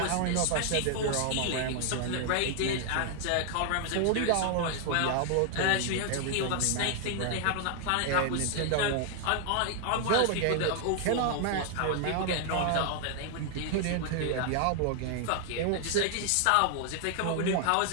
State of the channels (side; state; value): both; different; correlation 0.00